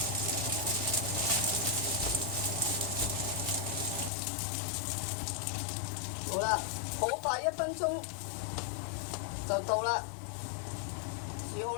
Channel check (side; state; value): right; drops out; at 4.1 s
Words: 好啦，好快1分鐘就到啦，煮好